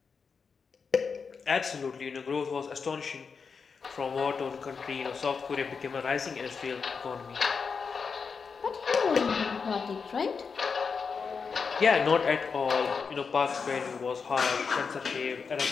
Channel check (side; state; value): right; quieter; 5.5 dB